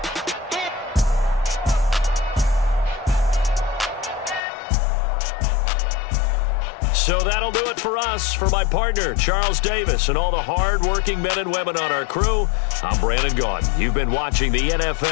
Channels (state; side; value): drops out; right; at 4.4 s